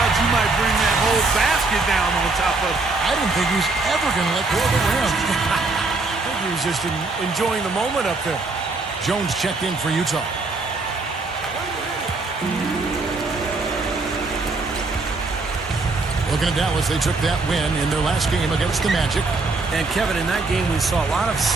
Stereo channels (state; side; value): quieter; left; 3.6 dB